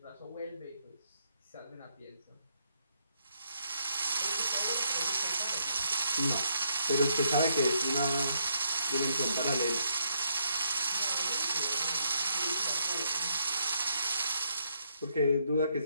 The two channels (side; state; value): both; inverted; correlation -0.75